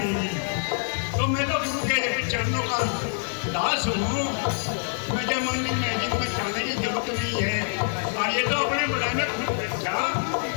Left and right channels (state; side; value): silent; right; digital silence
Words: तो मैं तो गुरु के चरणों का दास हूँ। मुझे मंदिर मस्जिद में जाने की जरूरत नहीं है। और ये तो अपने बड़े में खुद बच्चा